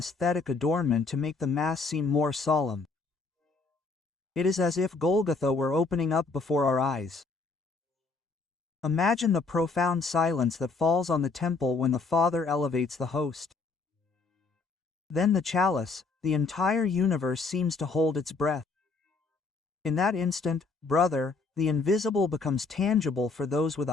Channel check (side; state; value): right; quieter; 4.1 dB